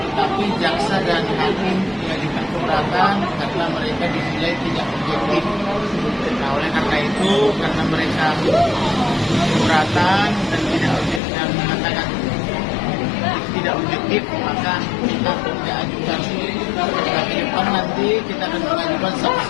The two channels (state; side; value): drops out; right; at 11.2 s